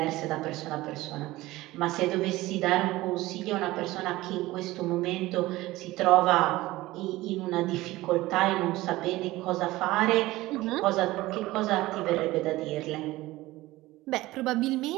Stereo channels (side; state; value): left; quieter; 18.2 dB